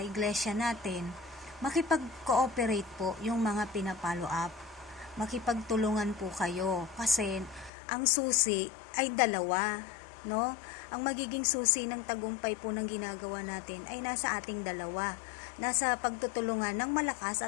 iglesia natin. Makipag-cooperate po yung mga pinapollow up. Makipagtulungan po kayo kasi ang susi ay dalawa, no? Ang magiging susi ng tagumpay po ng ginagawa natin ay nasa ating dalawa. Nasa pagtutulungan ng malakas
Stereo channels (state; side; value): drops out; right; at 7.7 s